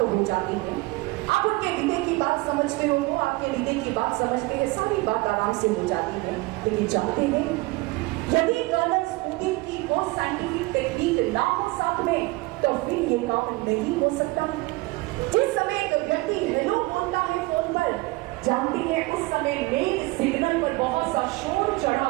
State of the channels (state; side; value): quieter; left; 22.5 dB